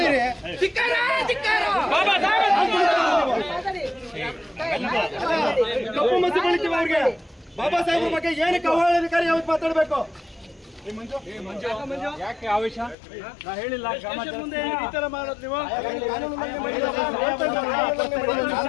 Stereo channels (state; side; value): drops out; right; at 13.0 s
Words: ಕಪ್ಪು ಮಸಿ ಬಳಿತೀವಿ ಅವ್ರಿಗೆ. ಬಾಬಾ ಸಾಹೇಬ್ರ ಬಗ್ಗೆ ಏನಕ್ಕೆ ಅವಹೇಳನಕಾರಿ ಯಾವತ್ತು ಮಾತಾಡಬೇಕು? ಯಾಕೆ ಆವೇಶ? ನಾ ಹೇಳಿಲ್ಲ ಮುಂದೆ ಈ ತರ ಮಾಡೋದು ನೀವು